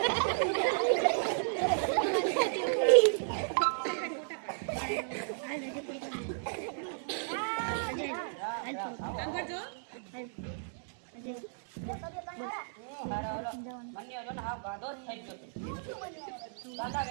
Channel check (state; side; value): silent; left; digital silence